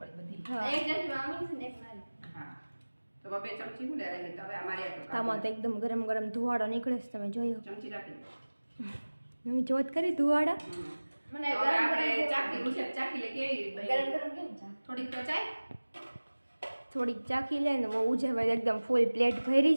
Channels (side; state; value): both; inverted; correlation -1.00